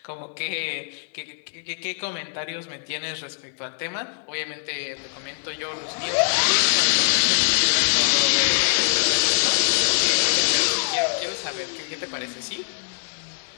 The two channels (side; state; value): right; silent; digital silence